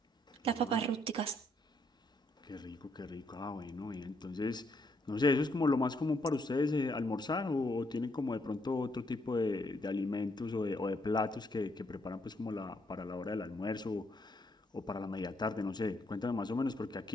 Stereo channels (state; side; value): normal; both; correlation 0.73